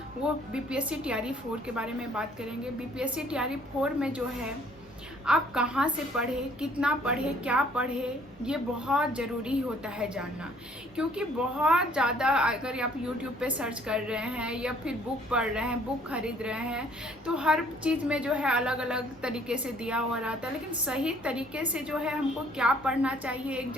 वो बीपीएससी टीआरई 4 के बारे में बात करेंगे। बीपीएससी टीआरई 4 में जो है आप कहाँ से पढ़े, कितना पढ़े, क्या पढ़े, ये बहुत ज़रूरी होता है जानना। क्योंकि बहुत ज़्यादा अगर आप यूट्यूब पे सर्च कर रहे हैं या फिर बुक पढ़ रहे हैं, बुक खरीद रहे हैं, तो हर चीज़ में जो है अलग अलग तरीके से दिया हुआ रहता है। लेकिन सही तरीके से जो है हमको क्या पढ़ना चाहिए,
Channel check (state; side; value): normal; both; correlation 0.60